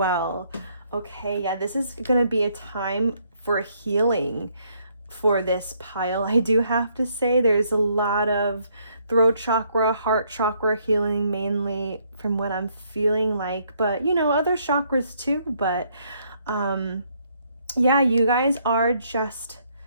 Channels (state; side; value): inverted; both; correlation -0.70